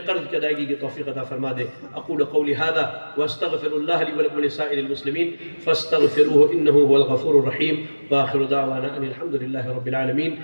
قرض کی ادائیگی کی توفیق عطا فرما دے۔ اقول قولی ھذا واستغفر اللہ لی ولکم ولسائر المسلمین فاستغفروہ انہ هو الغفور الرحیم، وآخر دعوانا ان الحمد للہ رب العالمین۔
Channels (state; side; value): inverted; both; correlation -1.00